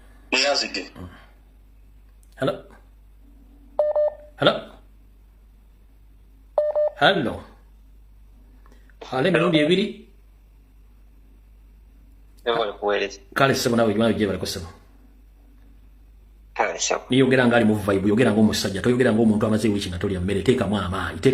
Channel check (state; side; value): identical; both; correlation 1.00